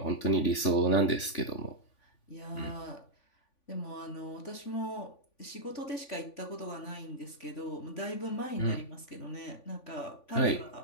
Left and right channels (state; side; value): late; right; 3.5 ms